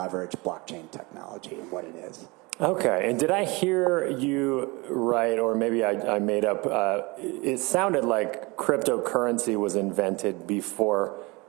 blockchain technology and what it is. Okay, and did I hear you right, or maybe I made up, it sounded like cryptocurrency was invented before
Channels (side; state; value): left; quieter; 25.4 dB